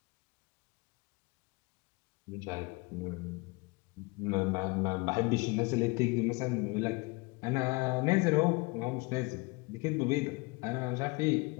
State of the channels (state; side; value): quieter; right; 27.0 dB